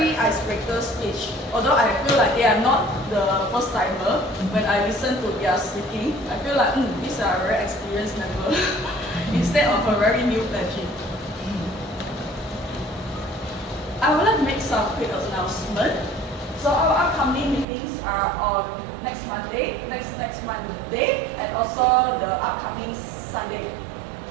icebreaker speech. Although I feel like they are not the first timer, when I listen to their speaking, I feel like these are very experienced members instead of a very new pledging. I would like to make some quick announcement. So our upcoming meetings are on next Monday, next Monday, and also the upcoming Sunday.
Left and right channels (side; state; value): left; drops out; at 17.7 s